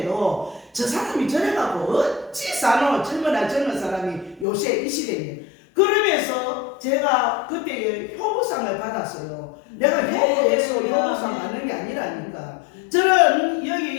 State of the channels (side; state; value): right; drops out; at 4.5 s